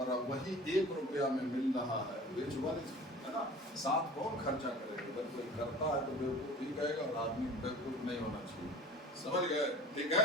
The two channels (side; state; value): both; normal; correlation 0.42